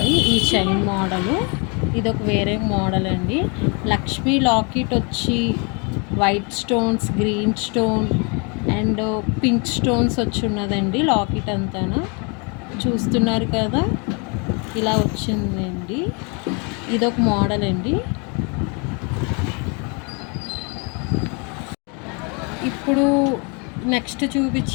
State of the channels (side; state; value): right; quieter; 33.7 dB